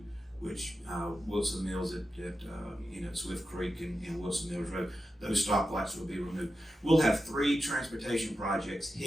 which Wilson Mills at Swift Creek and Wilson Mills Road, those stoplights will be removed. We'll have 3 transportation projects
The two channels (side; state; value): both; normal; correlation 0.90